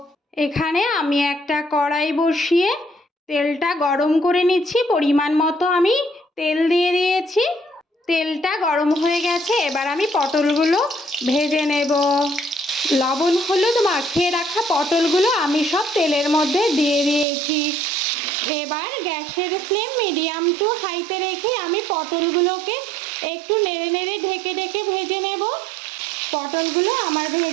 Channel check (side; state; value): left; drops out; at 17.2 s